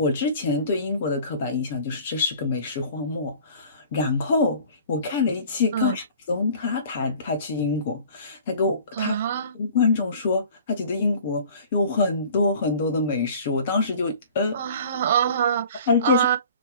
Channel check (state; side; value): inverted; both; correlation -0.46